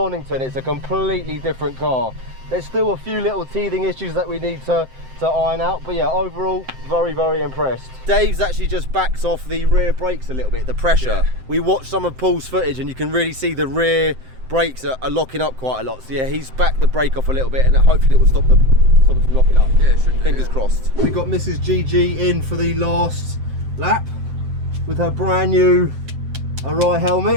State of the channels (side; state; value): left; late; 7.7 ms